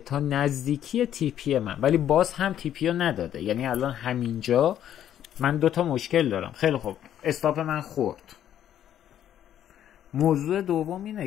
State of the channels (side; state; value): right; quieter; 10.7 dB